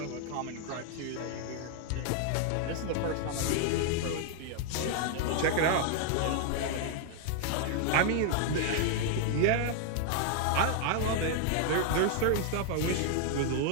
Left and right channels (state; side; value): different; both; correlation 0.00